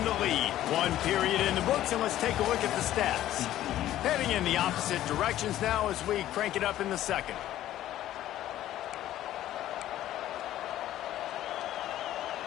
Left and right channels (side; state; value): right; quieter; 13.2 dB